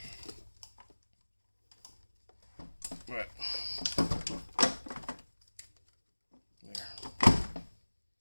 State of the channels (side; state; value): both; inverted; correlation -1.00